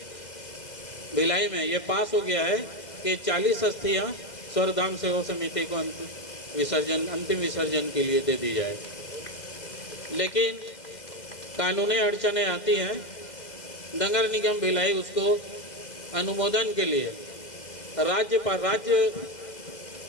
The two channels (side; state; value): right; late; 2.0 ms